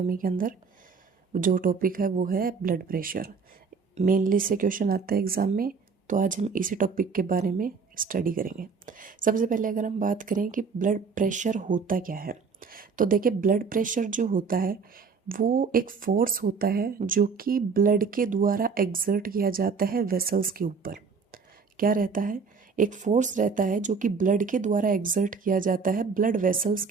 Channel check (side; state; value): left; quieter; 5.2 dB